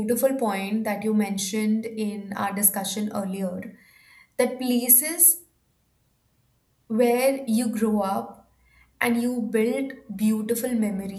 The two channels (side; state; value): both; identical; correlation 1.00